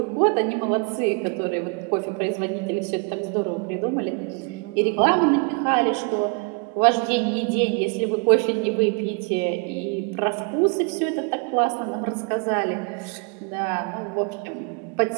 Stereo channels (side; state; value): left; quieter; 33.9 dB